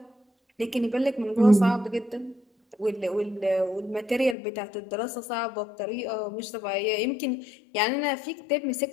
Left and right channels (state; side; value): drops out; right; at 4.4 s